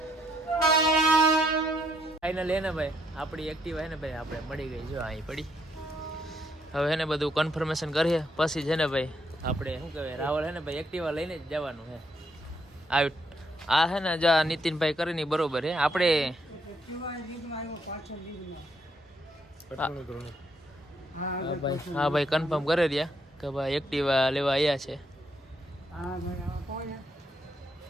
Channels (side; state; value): both; normal; correlation 0.73